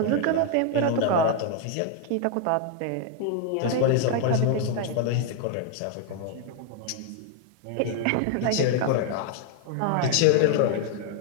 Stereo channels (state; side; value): different; both; correlation 0.00